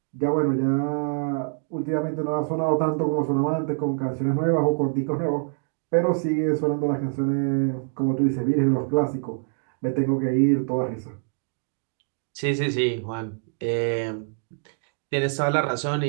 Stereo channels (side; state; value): left; silent; 62 dB below the other